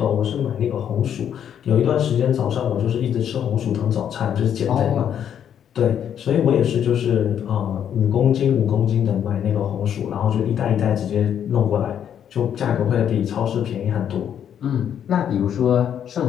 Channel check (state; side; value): quieter; right; 9.2 dB